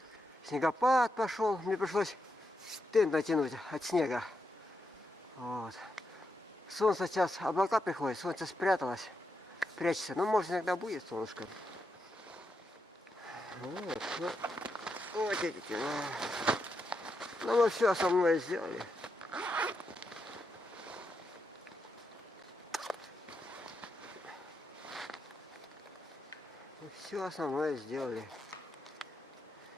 Снегопад пошел, мне пришлось тент натянуть от снега. Вот. Солнце сейчас, облака приходят, солнце спряталось, прячется. Ну, может, иногда будет солнышко. Вот, ну, вот эти. Ну, мы все основное сделали. Мы все основное сделали.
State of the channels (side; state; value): both; normal; correlation 0.84